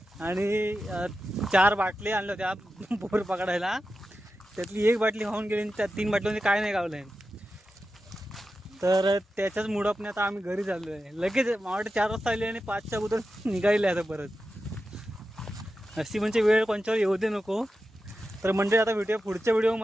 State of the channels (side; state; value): both; normal; correlation 0.91